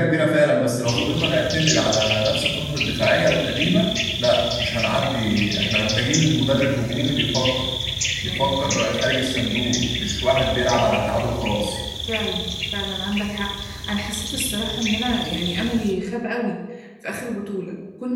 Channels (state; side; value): identical; both; correlation 1.00